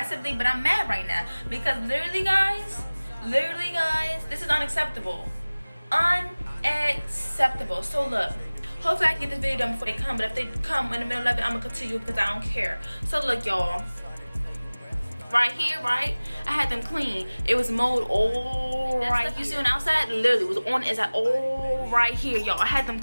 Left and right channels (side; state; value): both; inverted; correlation -1.00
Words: but I'm mad right now because literally guys, this is unacceptable. Unacceptable. So look, hopefully I can get this video done before they come, but if they come in the middle of it, I'm gonna continue because I don't care. So look, y'all, right here, right, I had them clean. It was mowed all right. You see on the outside, literally was on the inside, all right here, y'all. I had them